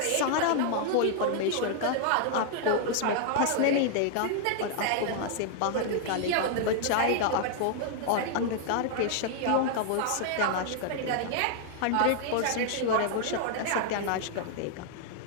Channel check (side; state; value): both; different; correlation 0.00